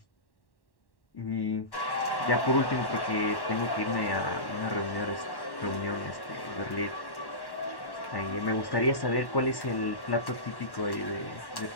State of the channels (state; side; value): late; right; 1.1 ms